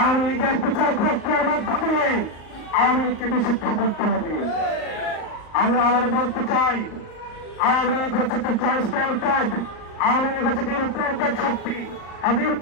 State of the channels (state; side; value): late; right; 38 ms